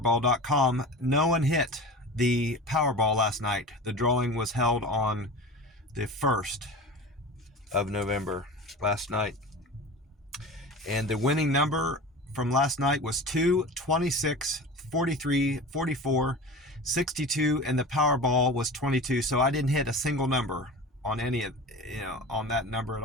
no one hit the Powerball last night. The drawing was held on the 1st of November last night. And the winning number from last night was 2, 26, 43, 44, 62, and the Powerball was 22. So I didn't hit a single number on any of, on that number at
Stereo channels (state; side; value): normal; both; correlation 0.33